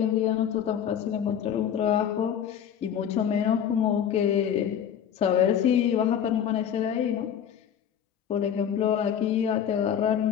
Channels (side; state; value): right; quieter; 9.0 dB